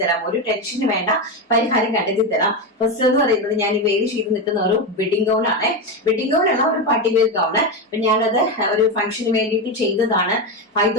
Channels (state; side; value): normal; both; correlation 0.13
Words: തരാം. ഒരു ടെൻഷന് വേണ്ട, പരിഹാരം കണ്ടെത്തി തരാം. ഫസ്റ്റ് എന്ന് പറയുന്നത് ഞാൻ ഈ വേര് ചെയ്ത് നിൽക്കുന്ന ഒരു വെഡിങ് ഗൗൺ ആണ്. വെഡിങ് ഗൗൺ അല്ല, ഒരു പാർട്ടി വെയർ ഗൗൺ. അപ്പൊ ഞാനത് ഒരു ഫംഗ്ഷന് വേണ്ടിയിട്ട് ചെയ്തതാണ്.